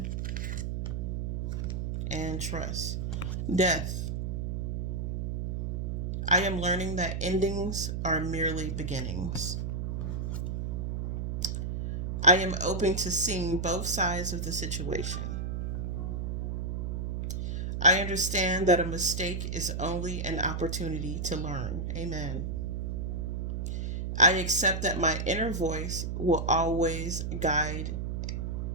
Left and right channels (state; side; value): noise; right; hum, 2 dB below the sound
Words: and trust. Death. I am learning that endings are merely beginnings. I am open to seeing both sides of the situation. I understand that a mistake is only an opportunity to learn. Amen. I accept that my inner voice will always guide